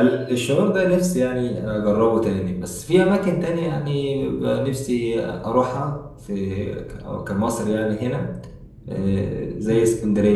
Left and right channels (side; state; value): both; identical; correlation 1.00